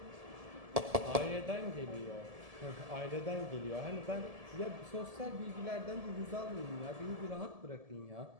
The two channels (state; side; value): late; left; 1.7 ms